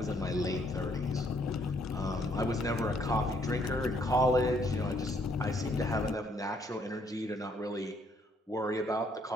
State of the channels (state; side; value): normal; both; correlation 0.68